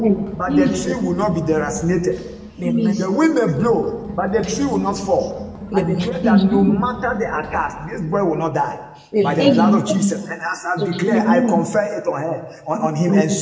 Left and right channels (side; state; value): both; identical; correlation 1.00